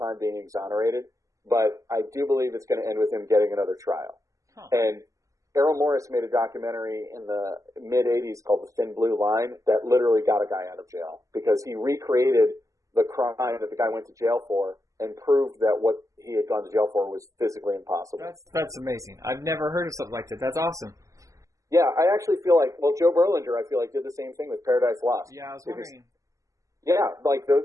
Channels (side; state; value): left; late; 0.16 ms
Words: being exonerated, but I do believe it's going to end with him getting another trial. Huh. And Errol Morris made a documentary in the mid-'80s called The Thin Blue Line that literally got a guy out of jail because he recreated the crime that the guy went to jail for and proved that what he had gone to jail for was physically impossible. That's amazing. I've never heard of something like that. That's awesome. Yeah, I actually feel like, Joe Berlinger, I feel like, did the same thing with Paradise Lost. Yeah, I was wondering. Yeah,